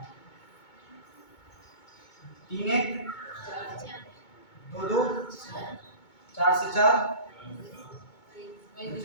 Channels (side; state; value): right; late; 2.2 ms